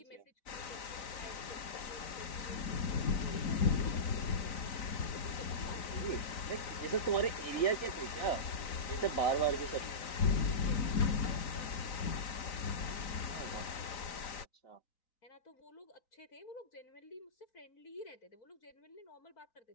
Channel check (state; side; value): late; right; 3.9 ms